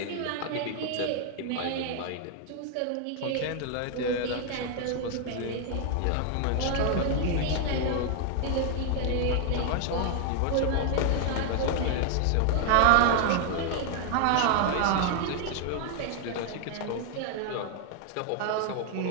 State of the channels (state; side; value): different; both; correlation 0.00